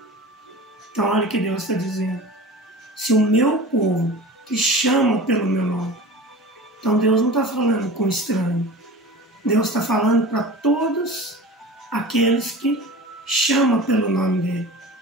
Então olha o que Deus está dizendo. Se o meu povo, que chama pelo meu nome. Então Deus não está falando com estranho. Deus está falando para todos aqueles que chamam pelo nome dele.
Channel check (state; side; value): normal; both; correlation 0.36